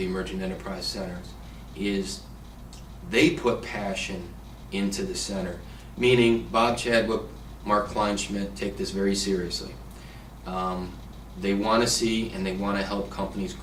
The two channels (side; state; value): both; identical; correlation 1.00